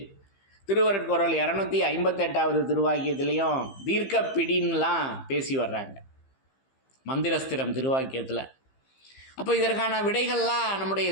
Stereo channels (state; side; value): late; right; 15 ms